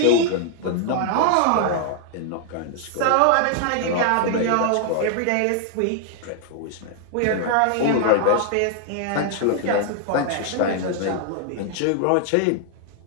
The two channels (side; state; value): both; different; correlation 0.00